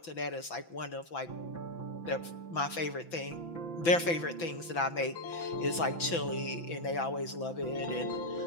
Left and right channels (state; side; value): late; right; 5.9 ms